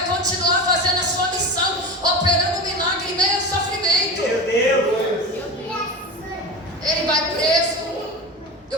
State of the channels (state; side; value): normal; both; correlation 0.26